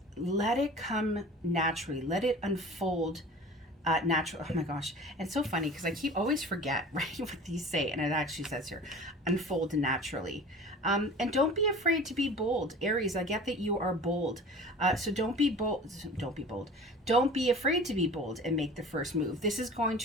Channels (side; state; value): both; normal; correlation 0.40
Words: Let it come naturally. Let it unfold natural. Oh my gosh. And it's so funny because I always forget, right, what these say. And it actually says here, unfold naturally. And don't be afraid to be bold. Aries, I get that you are bold. So don't be bold. Don't be bold. Don't be afraid to be bold and make the first move. This is going